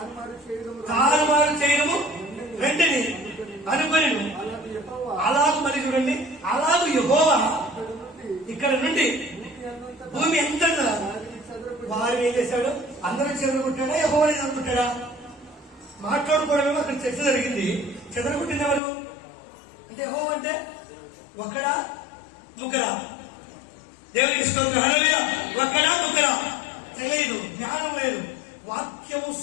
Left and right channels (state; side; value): drops out; right; at 18.8 s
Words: చేయడము తారుమారు చేయడము వెంటనే అనుకొని అలాంటి యెహోవా అలాగు మరి చూడండి, అలాగు యెహోవా ఇక్కడ నుండి భూమి ఎంత వారు ఏం చేశాడు, అందరూ చెదరగొట్టాడా, యెహోవాని చెదరగొట్టాడా? మాట్లాడుకోవడమేమో అక్కడ చర్చ జరిగింది. చెదరగొట్టింది ఎవరు అంటే, యెహోవా అంటే ఒక్కడా ముగ్గురా? దేవునికి స్తోత్రం. హల్లెలూయా. ఒక్కడా ముగ్గురా తెలియదు, జ్ఞానం లేదు. వాక్యము